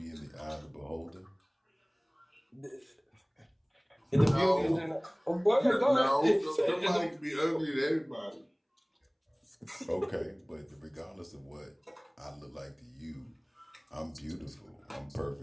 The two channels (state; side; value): identical; both; correlation 1.00